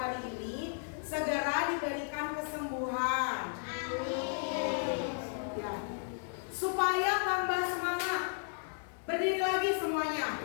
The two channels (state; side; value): silent; right; digital silence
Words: hari ini segera diberikan kesembuhan. Ya. Supaya tambah semangat, berdiri lagi